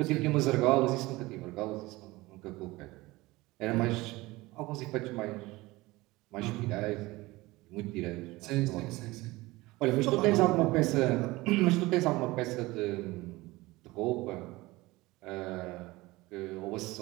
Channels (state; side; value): quieter; left; 20.5 dB